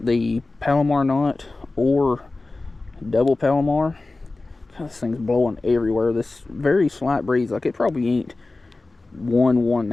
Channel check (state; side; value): quieter; right; 3.3 dB